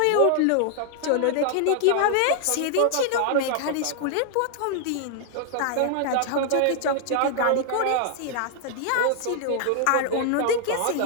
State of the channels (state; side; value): different; both; correlation 0.00